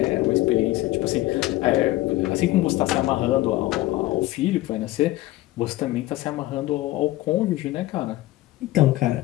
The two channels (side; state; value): right; quieter; 17.4 dB